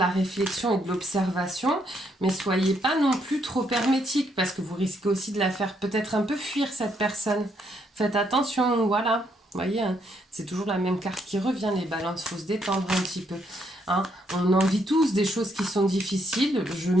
réflexion et de l'observation, mais soyez pas non plus trop hermétique, parce que vous risquez aussi de la faire peut-être un peu fuir cette personne. Faites attention, voilà. Vous voyez, hein, c'est toujours la même carte qui revient, les balances, il faut se détendre un petit peu. Hein. On en vit tous des choses qui sont difficiles, je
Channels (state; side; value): normal; both; correlation 0.74